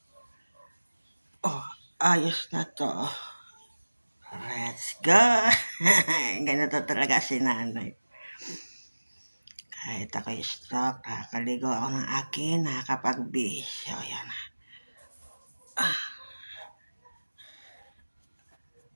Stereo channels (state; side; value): inverted; both; correlation -1.00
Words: Ayos na to, Let's go! Ganito talaga si nanay. Kahit ako'y stroke, nakakaligo ako ng akin, nakakapagbihis. So, yan.